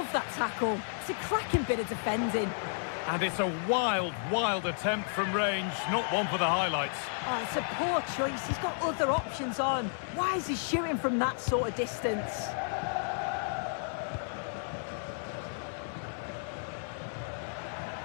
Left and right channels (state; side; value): silent; right; 56 dB below the other